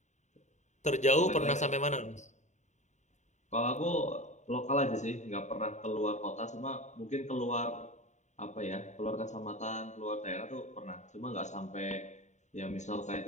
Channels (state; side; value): late; right; 0.34 ms